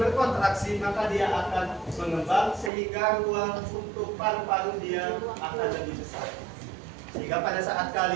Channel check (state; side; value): drops out; left; at 2.7 s